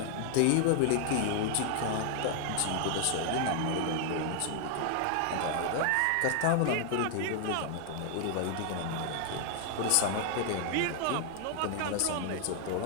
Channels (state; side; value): different; both; correlation 0.00